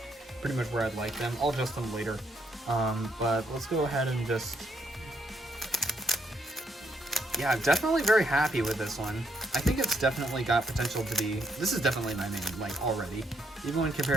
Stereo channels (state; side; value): normal; both; correlation 0.74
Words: pretty much where I'd like them. I'll adjust them later. But let's go ahead and just, yeah, I'm definitely very happy with this one. I think it's definitely got potential to be, this is definitely my main, like, already. Even when